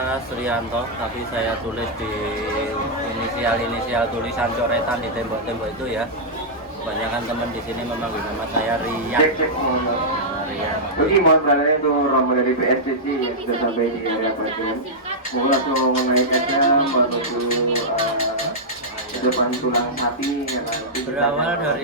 Sriyanto, tapi saya tulis di inisial tulisan coretan di tembok-tembok itu ya. Kebanyakan teman di sini memanggil nama saya Rian. Rian. Oke, mohon beralih untuk rombongan dari PSCC yang sudah sampai di area bagian. Mohon langsung menaikkannya menuju depan tulang sapi. Berawal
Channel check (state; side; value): normal; both; correlation -0.10